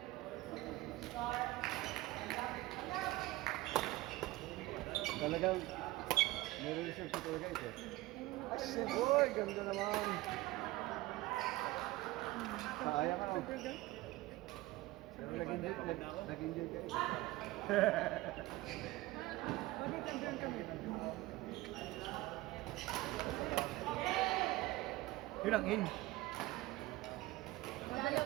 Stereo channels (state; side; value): quieter; left; 18.6 dB